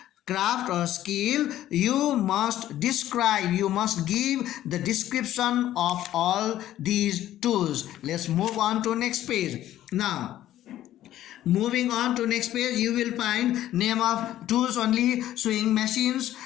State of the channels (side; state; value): right; quieter; 13.0 dB